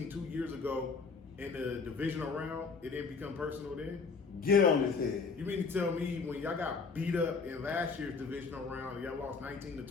2 years ago in the divisional round, it didn't become personal then? Get on his head. You mean to tell me when y'all got beat up in last year's divisional round and y'all lost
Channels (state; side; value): quieter; right; 4.8 dB